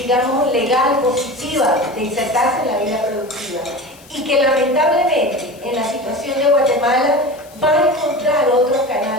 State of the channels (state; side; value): noise; left; hiss, 24 dB below the sound